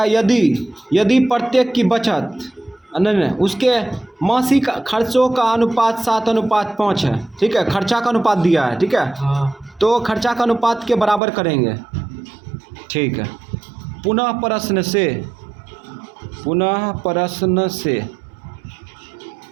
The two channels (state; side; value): drops out; left; at 11.2 s